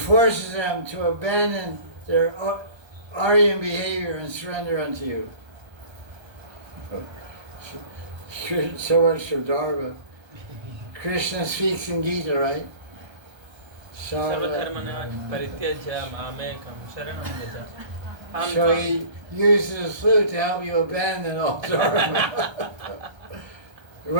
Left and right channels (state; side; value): late; left; 1.3 ms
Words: them to abandon their Aryan behavior and surrender unto you. So much for Dharma. Krishna speaks in Gita, right? So he uses his flute to help you abandon all Dharma.